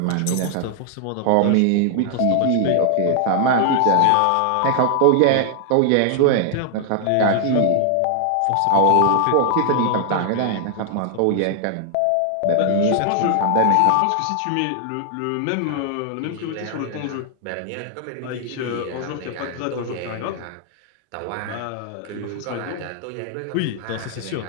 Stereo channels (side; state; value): both; different; correlation 0.00